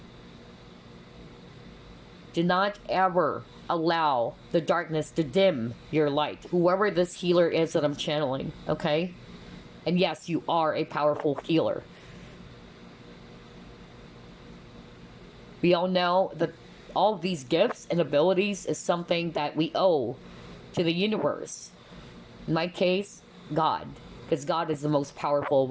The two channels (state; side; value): identical; both; correlation 1.00